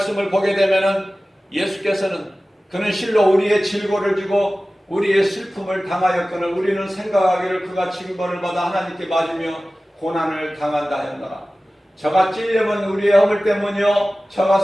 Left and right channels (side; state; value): both; normal; correlation 0.97